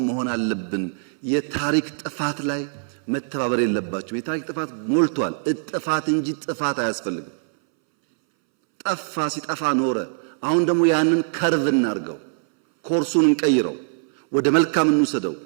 መሆን አለብን። የታሪክ ጥፋት ላይ መተባበር የለባቸው። የታሪክ ጥፋት ሞልቷል። እጥፋት እንጂ ጥፋት አያስፈልግም። ጠፋ ሲጠፋ ኖረ። አሁን ደግሞ ያንን ከርቭ እናርገው፣ ኮርሱን እንቀይረው፣ ወደ መልካም እንውሰደው።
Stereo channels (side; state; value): left; silent; 63 dB below the other